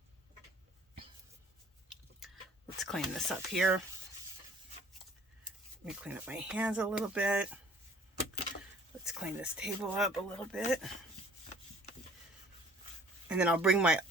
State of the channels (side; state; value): both; normal; correlation 0.52